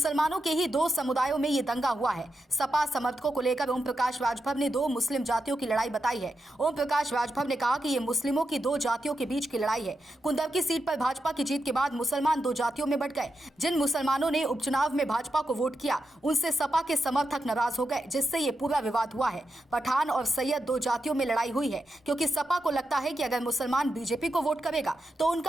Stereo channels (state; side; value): normal; both; correlation 0.87